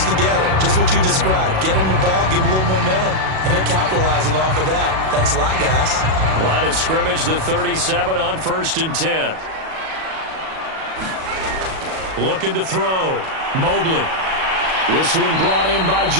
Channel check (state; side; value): late; left; 37 ms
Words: together. Just what you described. Get them the ball, give them a little momentum, and they're capitalizing off of that. Thanks a lot, guys. Line of scrimmage, the 37 on 1st and 10. Looking to throw. Mobley. This one brought in by